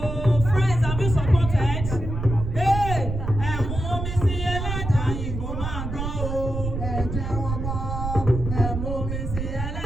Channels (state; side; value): noise; right; rumble, 5 dB below the sound